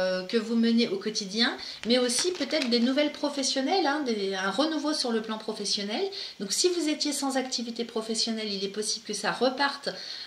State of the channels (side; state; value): both; identical; correlation 1.00